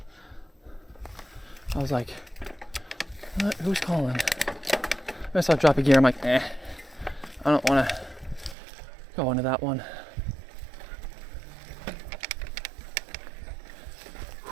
I was like, what? Who's calling? I saw drop a gear. I'm like, I don't want to go into that one.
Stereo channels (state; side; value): drops out; left; at 8.6 s